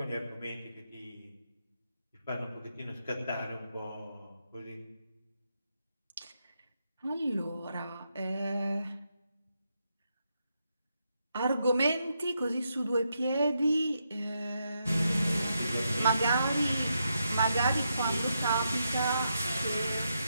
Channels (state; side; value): inverted; both; correlation -0.82